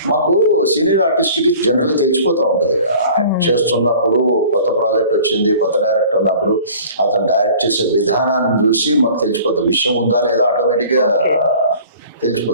మాకు సీనియర్ ఆర్టిస్ట్కి జనరల్గా తెలిసిపోతూ ఉంటుంది. యాక్ట్ చేస్తున్నప్పుడు కొత్త ప్రాజెక్ట్ వచ్చింది, కొత్త డైరెక్టర్ ఉన్నప్పుడు అతను డైరెక్ట్ చేసే విధానాన్ని చూసి మాకు తెలిసిపోతుంది. విషయం ఉందా లేదా ఆటోమేటిక్గా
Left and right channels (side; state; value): both; inverted; correlation -0.47